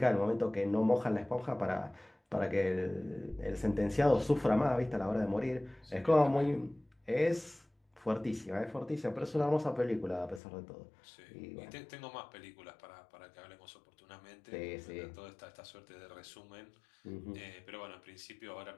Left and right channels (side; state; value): right; drops out; at 10.4 s